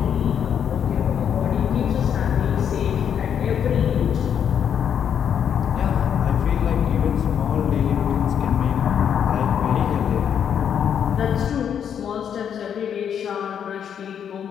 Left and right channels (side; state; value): right; quieter; 8.4 dB